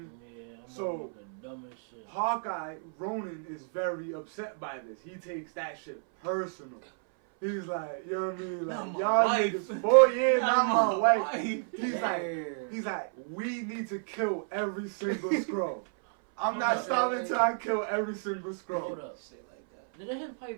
Yeah, I'm so the dumbest shit. Hawkeye, Ronan, is very upset by this. He takes that shit personal. He's like, you know what I mean? Like, y'all niggas 4 years, not my wife. He's like, we need to kill every single Skrull. I'm not stopping until I kill every single Skrull. Hold up. Shit like that. Didn't his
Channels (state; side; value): silent; left; 57 dB below the other